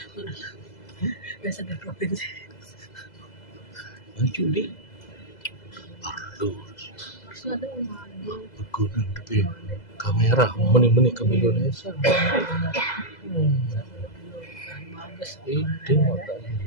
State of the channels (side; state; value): right; late; 2.0 ms